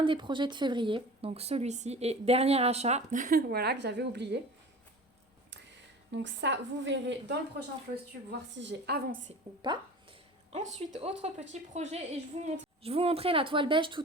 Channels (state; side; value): normal; both; correlation 0.38